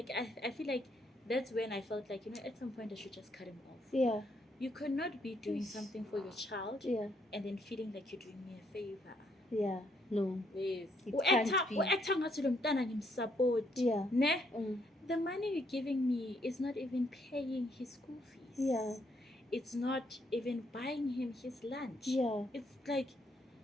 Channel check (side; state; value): both; normal; correlation 0.72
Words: I feel like that's when I felt like, you know, at some point I should just cut him off. Yeah. You could not be doing something for your child Yeah. and then feeling like you're doing me a favor. Yeah. No. Yes. It can't be. U-acta ngathi lo mntana ngimsupport. Yeah. Ne? Mm. The money you're giving me is not even paying his school fees. Yeah. It's not even buying him his lunch. Yeah. It's like,